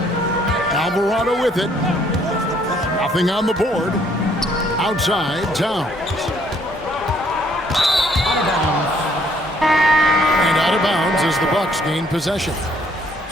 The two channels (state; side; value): normal; both; correlation 0.64